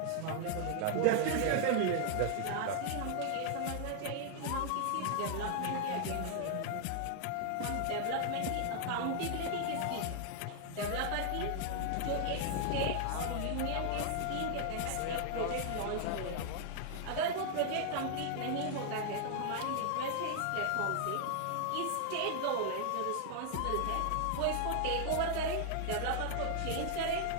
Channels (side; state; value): both; different; correlation 0.00